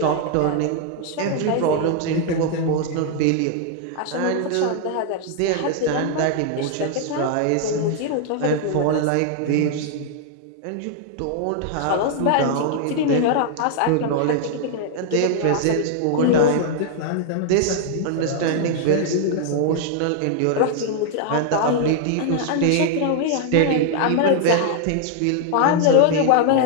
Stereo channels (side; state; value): both; different; correlation 0.00